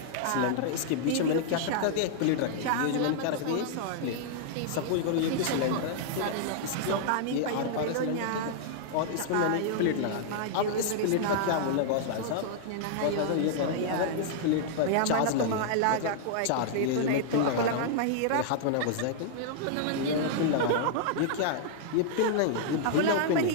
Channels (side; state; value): both; different; correlation -0.01